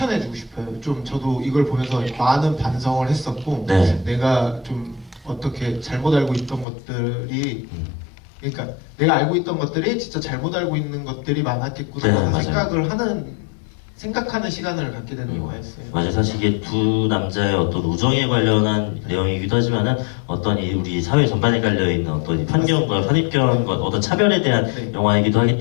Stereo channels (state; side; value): drops out; right; at 6.7 s